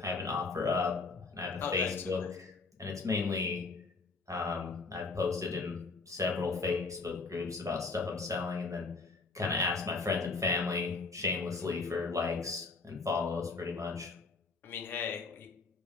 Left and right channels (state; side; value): quieter; right; 4.0 dB